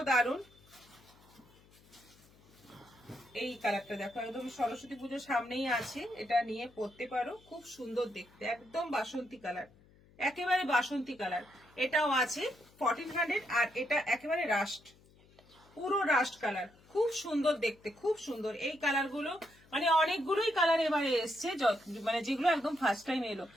দারুন। এই কালারটা দেখো, একদম সরস্বতী পুজোর সামনেই আছে, এটা নিয়ে পরতে পারো, খুব সুন্দর দেখতে, একদম বাসন্তী কালার, একেবারে বাসন্তী কালার। এটাও আছে 1400। আর এটা একেবারে রাস্ট, পুরো রাস্ট কালার, খুব সুন্দর দেখতে, খুব সুন্দর। এই কালার গুলো মানে অনেকগুলোই কালার এবারে এসছে, মানে যেগুলো একদম ফার্স্ট টাইম এলো।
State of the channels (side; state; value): left; noise; hum, 27 dB below the sound